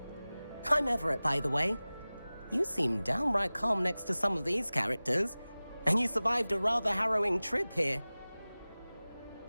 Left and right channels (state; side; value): inverted; both; correlation -0.98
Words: I'm Everett, by the way. You seem downright calm next to some of these characters, and you survived a rather harrowing trip here.